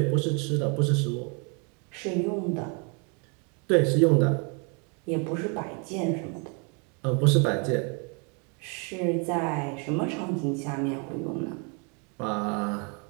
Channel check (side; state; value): left; quieter; 35.5 dB